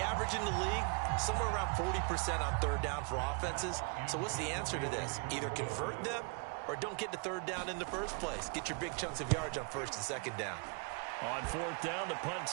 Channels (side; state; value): left; quieter; 36.3 dB